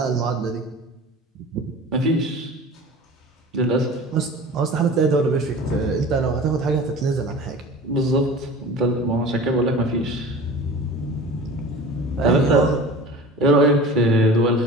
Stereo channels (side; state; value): both; normal; correlation 0.39